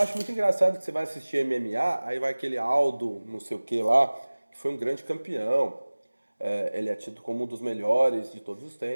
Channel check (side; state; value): both; inverted; correlation -1.00